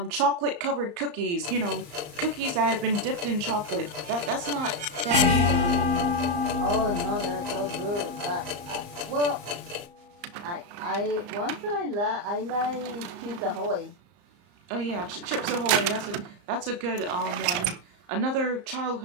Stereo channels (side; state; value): left; late; 34 ms